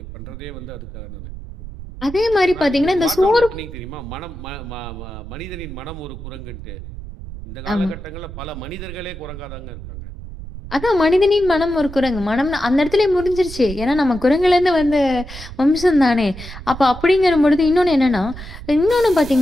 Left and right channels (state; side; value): noise; right; rumble, 12 dB below the sound